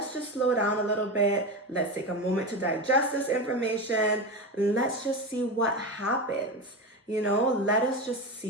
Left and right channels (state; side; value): normal; both; correlation 0.20